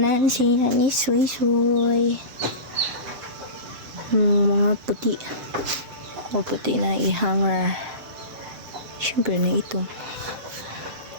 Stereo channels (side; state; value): left; late; 6.8 ms